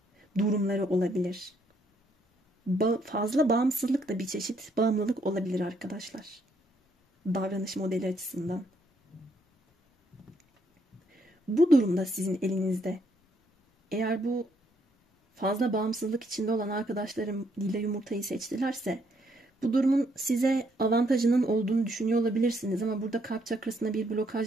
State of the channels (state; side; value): normal; both; correlation 0.72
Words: durumları olabilir. Fazla bağımsızlık da bir çeşit bağımlılık olabilir arkadaşlar. Davranış modeli açısından. Bu durumda sizin elinizde. Eğer bu fazla bağımsızlık içinde olan arkadaşlarım lila yumurtayı seçtilerse bu durumun size avantajının olduğunu düşünüyor olabilirsiniz ama burada kalp çakrasına bir